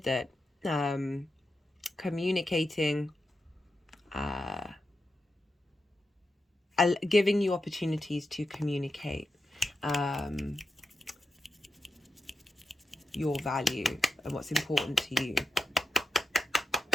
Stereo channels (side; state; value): both; normal; correlation 0.87